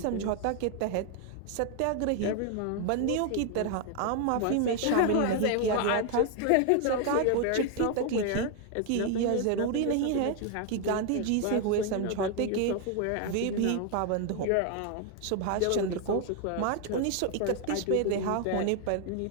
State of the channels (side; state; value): both; different; correlation 0.01